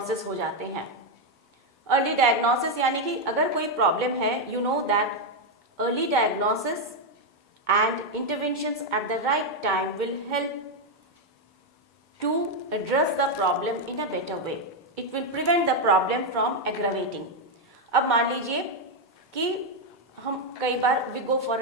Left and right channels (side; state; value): both; normal; correlation 0.03